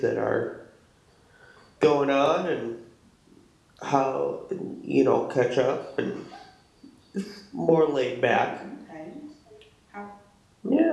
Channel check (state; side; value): identical; both; correlation 1.00